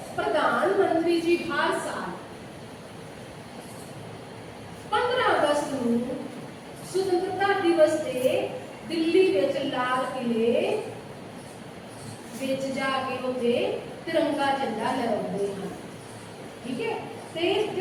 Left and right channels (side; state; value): both; identical; correlation 1.00